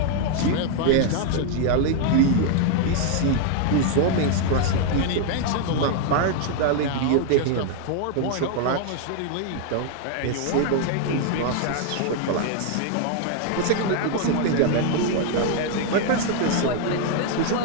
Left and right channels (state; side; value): different; both; correlation 0.00